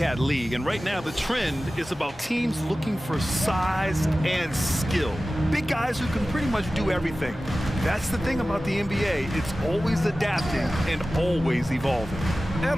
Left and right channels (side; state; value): both; normal; correlation 0.96